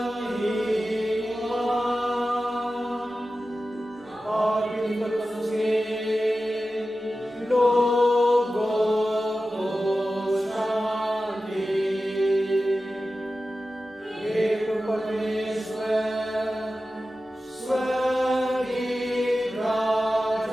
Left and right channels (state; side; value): normal; both; correlation 0.94